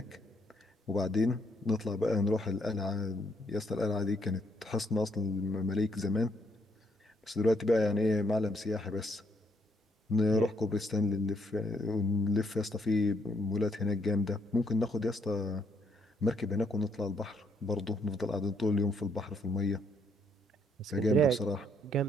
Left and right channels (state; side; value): normal; both; correlation 0.71